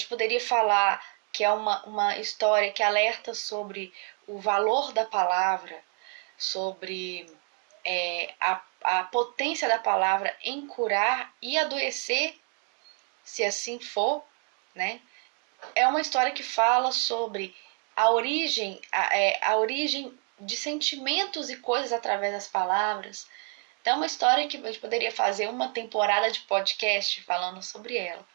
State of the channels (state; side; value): quieter; left; 37.2 dB